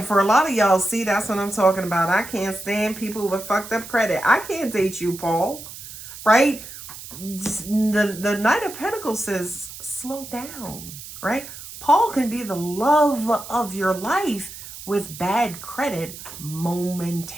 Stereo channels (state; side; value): noise; right; hiss, 13 dB below the sound